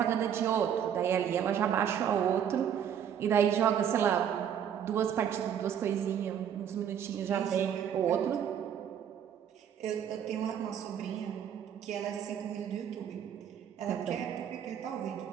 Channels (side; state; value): left; quieter; 8.8 dB